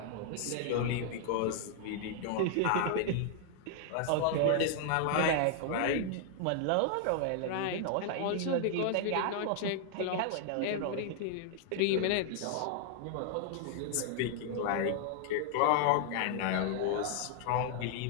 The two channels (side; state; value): both; different; correlation 0.00